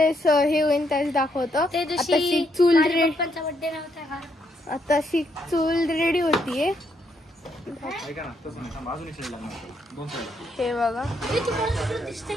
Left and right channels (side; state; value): both; normal; correlation 0.75